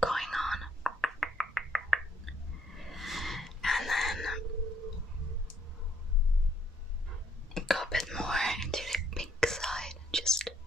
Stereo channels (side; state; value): both; normal; correlation 0.71